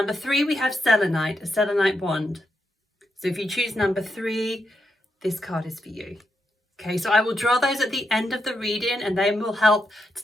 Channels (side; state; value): both; normal; correlation 0.83